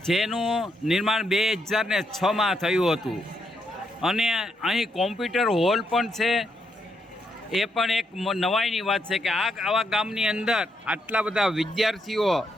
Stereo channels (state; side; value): normal; both; correlation 0.79